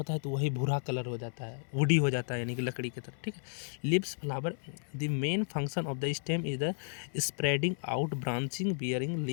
है तो वही भूरा कलर हो जाता है, वुडी हो जाता है, यानी कि लकड़ी की तरह, ठीक है। Leaves, flower, the main function of the stem is the spreading out, branching, bearing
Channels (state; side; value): silent; right; 56 dB below the other